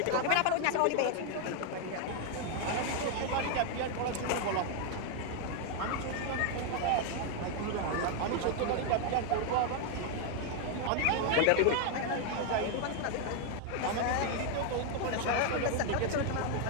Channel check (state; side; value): different; both; correlation 0.01